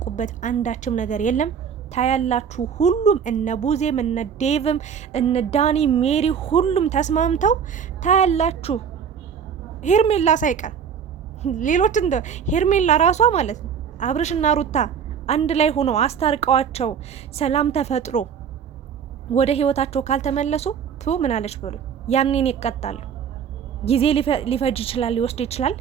አንዳችም ነገር የለም። ታያላችሁ። ሁሉም እነ ቡዜም እነ ዴቭም እነ ዳኒ ሜሪ ሁሉም ተስማምተው ታያላችሁ። ሄርሜላ ሳይቀር ሌሎች እንደ ሄርሜላ ራሷ ማለት ነው አብርሽና ሩታ አንድ ላይ ሆነው አስታርቀዋቸው ሰላም ተፈጥሮ ወደ ህይወታቸው ካልተመለሱ ምን አለች ብሎ ያኔን ይቀጣሉ። ጊዜ ሊፈጅ ይችላል፣ ሊወስድ ይችላል፣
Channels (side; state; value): left; quieter; 7.4 dB